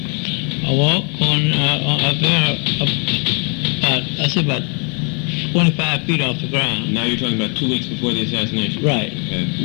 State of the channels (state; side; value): quieter; right; 35.9 dB